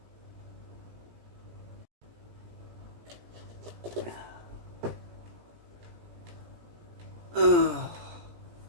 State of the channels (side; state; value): left; late; 17 ms